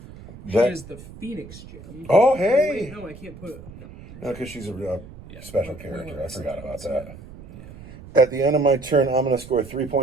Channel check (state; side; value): noise; right; rumble, 17 dB below the sound